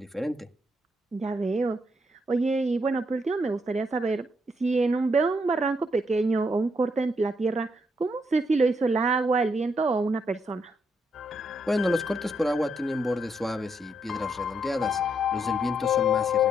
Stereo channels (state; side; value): normal; both; correlation 0.76